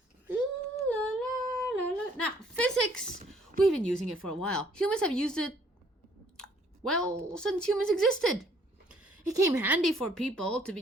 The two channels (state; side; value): normal; both; correlation 0.62